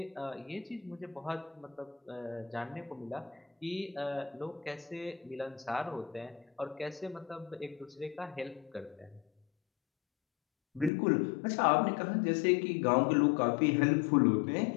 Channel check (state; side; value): drops out; right; at 10.9 s